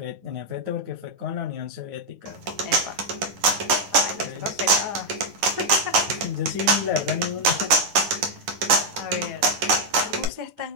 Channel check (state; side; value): late; left; 10 ms